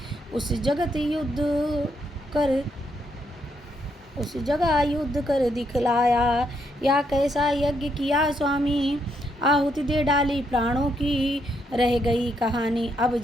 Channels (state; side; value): normal; both; correlation 0.76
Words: उस जगह युद्ध कर दिखलाया। या कैसा यज्ञ किया स्वामी, आहुति दे डाली प्राणों की, रह गई कहानी अब